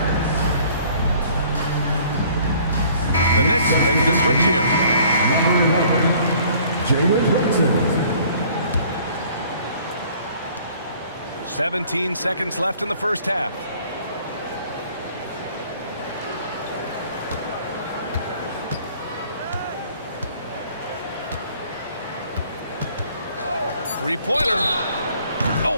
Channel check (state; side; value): inverted; both; correlation -0.56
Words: The Knicks making a switch here. Number 11, Jalen Brunson. 17 seconds left in the first half. Three-pointer.